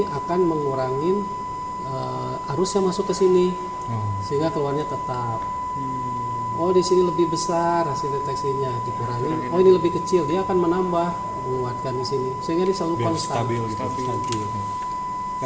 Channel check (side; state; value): both; identical; correlation 1.00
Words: akan mengurangi arus yang masuk ke sini, sehingga keluarnya tetap. Oh di sini lebih besar hasil deteksinya, dikurangi. Oh ini lebih kecil, dia akan menambah, menguatkan di sini, sehingga dia selalu konstan. Stabil.